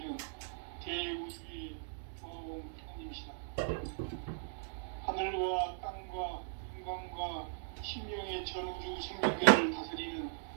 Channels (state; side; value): silent; left; digital silence